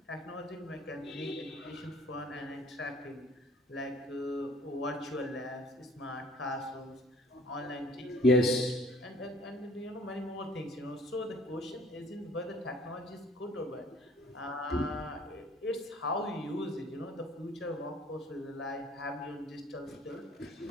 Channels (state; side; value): normal; both; correlation 0.54